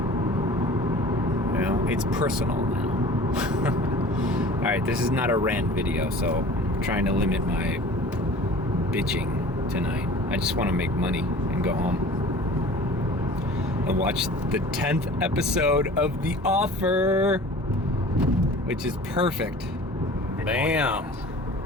You know, it's personal now. Alright, this is not a rant video, so I'm trying to limit my bitching tonight. I just want to make money and go home. And watch the 10th episode of The Offer, which is perfect. Bam!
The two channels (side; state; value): both; normal; correlation 0.43